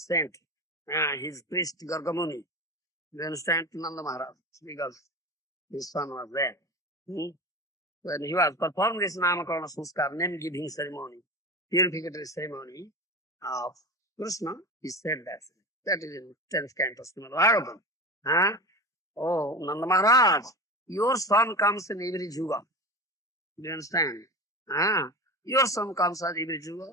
his priest Gargamuni. Do you understand? Nanda Maharaj, because his son was there. When he was performing this Namakarana Sanskar, name giving ceremony, purificatory ceremony of Krishna, he said that. That is in 10th canto, Srimad Bhagavatam. Oh, Nanda Maharaj, your son comes in every Yuga. Do you understand? Your son comes at every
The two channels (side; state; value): both; normal; correlation 0.27